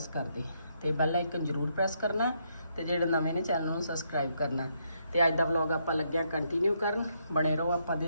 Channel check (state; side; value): inverted; both; correlation -0.76